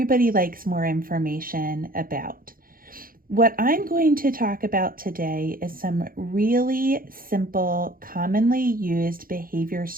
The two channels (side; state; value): left; late; 0.42 ms